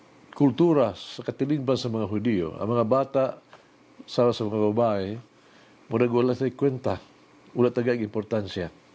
kultura, sa katilingban sa mga Hudiyo, ang mga bata, sa mga babae, murag wala sa kwenta, wala tagag importansya.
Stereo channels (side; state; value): both; identical; correlation 1.00